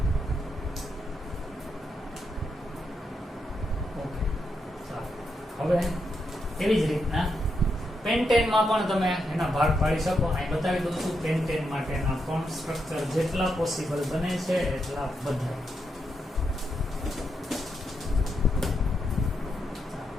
ઓકે, ચાલો. હવે એવી જ રીતના પેન્ટેનમાં પણ તમે એના ભાગ પાડી શકો. અહીં બતાવી દઉં છું પેન્ટેન માટેના પણ સ્ટ્રક્ચર જેટલા પોસિબલ બને છે એટલા બધા.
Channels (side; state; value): both; normal; correlation 0.83